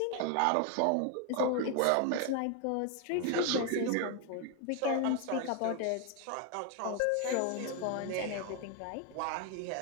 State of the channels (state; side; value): different; both; correlation 0.01